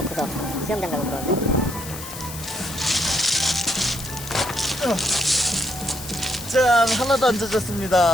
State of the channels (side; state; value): left; noise; hiss, 11 dB below the sound